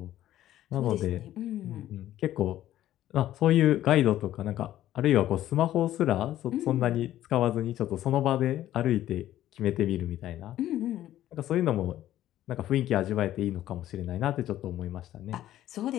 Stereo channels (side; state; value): right; quieter; 13.1 dB